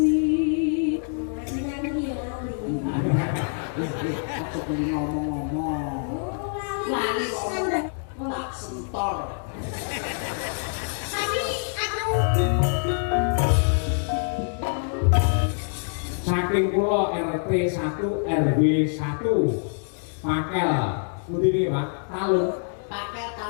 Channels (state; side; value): silent; right; 59 dB below the other